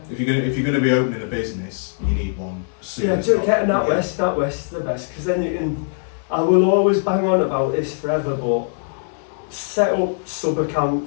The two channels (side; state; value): right; silent; 62 dB below the other